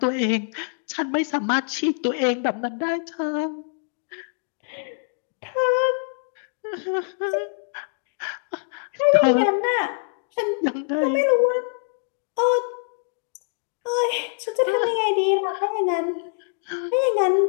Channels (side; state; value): right; silent; digital silence